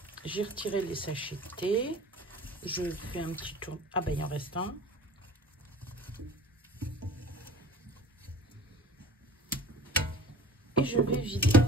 J'ai retiré les sachets de thé. Je fais un petit tour. Ah ben, il en reste un. Et je vais vider.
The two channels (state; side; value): normal; both; correlation 0.42